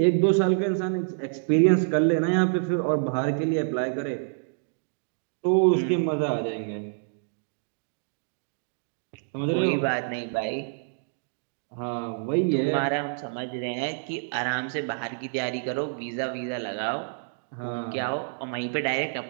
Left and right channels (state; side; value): silent; left; digital silence